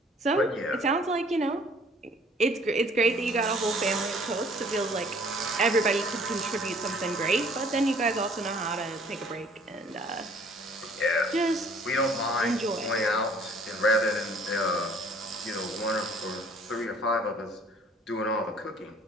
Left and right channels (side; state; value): both; normal; correlation 0.56